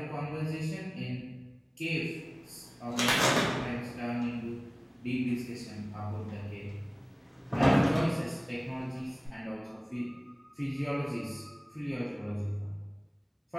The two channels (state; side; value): identical; both; correlation 1.00